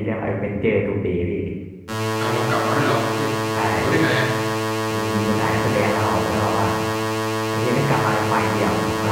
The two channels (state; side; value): identical; both; correlation 1.00